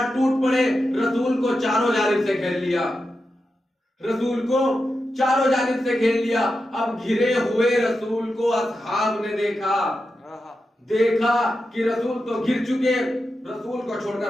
टूट पड़े, रसूल को चारों जानिब से घेर लिया, रसूल को चारों जानिब से घेर लिया। अब घिरे हुए रसूल को असहाब ने देखा कि रसूल तो घिर चुके, रसूल को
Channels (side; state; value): both; normal; correlation 0.89